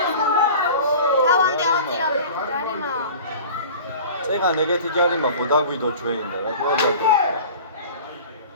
წეგან ეგეთი ჯარიმა ხო დაგვიდო ჩვენ და რა თქმა უნდა.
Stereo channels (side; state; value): both; inverted; correlation -0.40